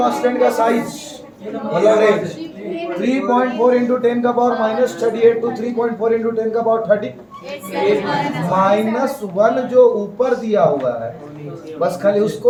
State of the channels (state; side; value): identical; both; correlation 1.00